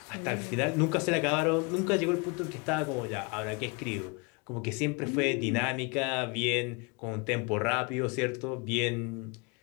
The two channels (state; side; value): quieter; right; 30.7 dB